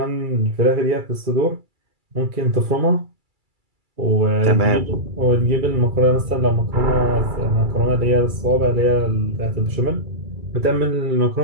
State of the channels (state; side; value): late; left; 2.3 ms